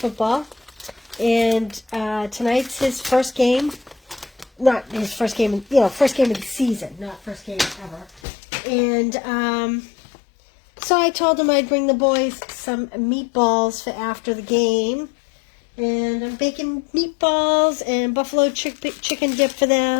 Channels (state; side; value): drops out; right; at 8.2 s